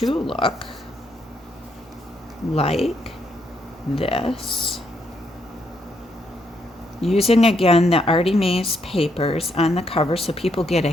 look like this. Using, again, the Artie Mays papers on the cover so people get a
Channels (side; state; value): both; normal; correlation 0.75